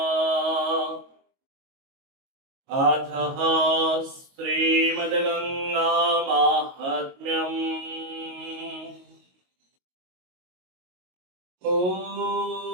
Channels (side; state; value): left; late; 22 ms